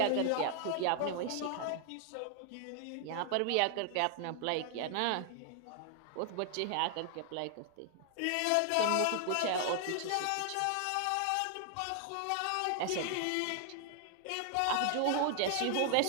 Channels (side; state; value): both; different; correlation 0.00